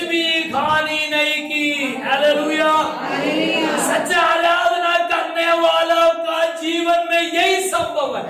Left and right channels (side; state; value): both; identical; correlation 1.00